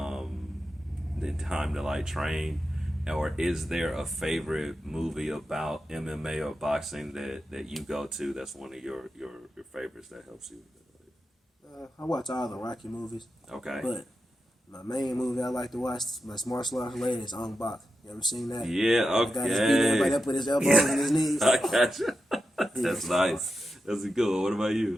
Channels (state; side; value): normal; both; correlation 0.89